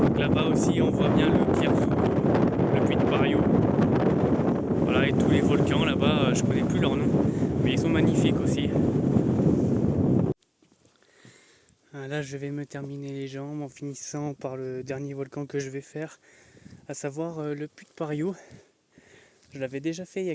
Donc là-bas aussi, on voit bien le Cliarzo, le puits de Pariou. Voilà, et tous les volcans là-bas, je connais plus leur nom, mais ils sont magnifiques aussi. Là, je vais me terminer les jambes en finissant par le dernier volcan que je vais faire, à savoir le puits de Pariou. Je l'avais déjà fait il y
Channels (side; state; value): both; identical; correlation 1.00